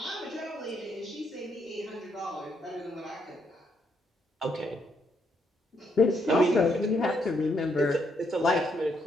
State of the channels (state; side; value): normal; both; correlation 0.75